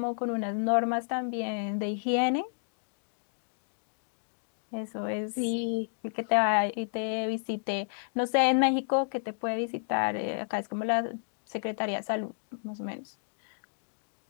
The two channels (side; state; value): right; silent; digital silence